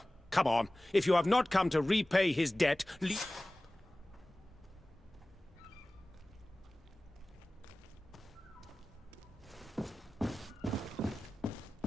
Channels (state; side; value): normal; both; correlation 0.97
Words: come on. If you have not come to repay his debt,